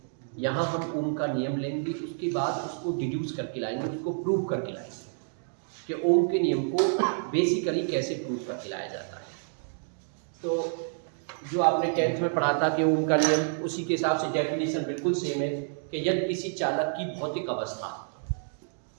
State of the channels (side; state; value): left; silent; digital silence